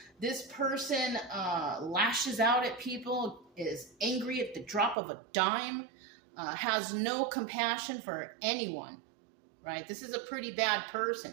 This person lashes out at people, is angry at the drop of a dime, has no compassion for anyone, right? This is a pretty bad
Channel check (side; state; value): left; drops out; at 5.0 s